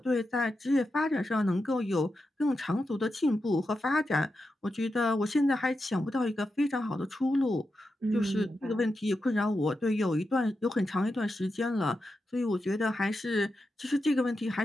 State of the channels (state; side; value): normal; both; correlation 0.88